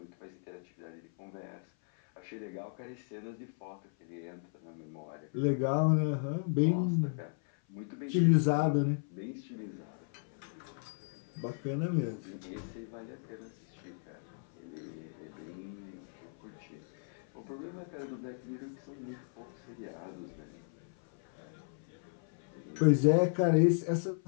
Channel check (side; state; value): right; silent; 54 dB below the other